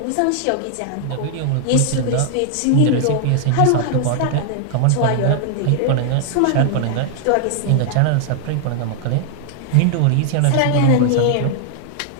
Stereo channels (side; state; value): both; different; correlation 0.00